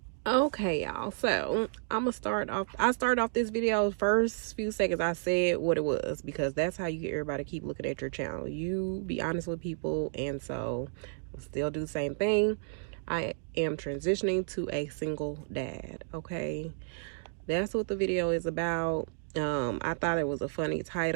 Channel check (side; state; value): left; silent; digital silence